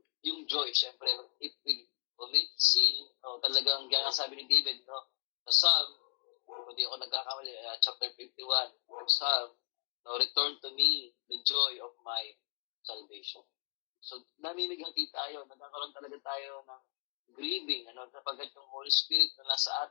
yung joy, syempre, if we commit sin, talagang gaya sabi ni David, sa Psalm, hindi ako nagkakamali, chapter 51, Psalm, return to me the joy of my salvation. So, namimigati tayo, magkakaroon talaga tayo ng grieving, sapagkat yung Holy Spirit na nasa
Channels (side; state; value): right; quieter; 35.1 dB